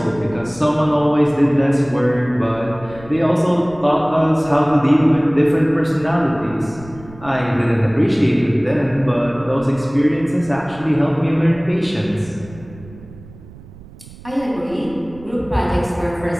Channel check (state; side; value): noise; right; rumble, 19 dB below the sound